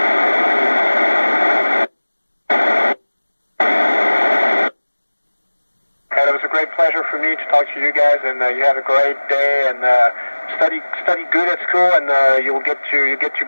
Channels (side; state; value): both; inverted; correlation -1.00